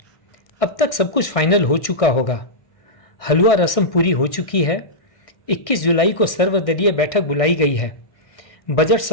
अब तक सब कुछ फाइनल हो चुका होगा। हलवा रस्म पूरी हो चुकी है। 21 जुलाई को सर्वदलीय बैठक बुलाई गई है। बजट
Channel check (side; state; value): right; late; 1.6 ms